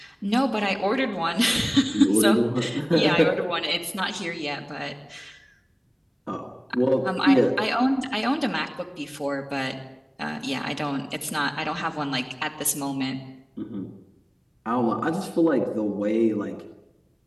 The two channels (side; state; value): both; identical; correlation 1.00